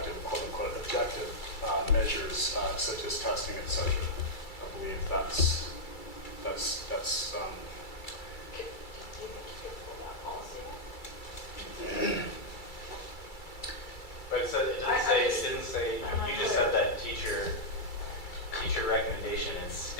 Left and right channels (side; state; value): right; late; 2.3 ms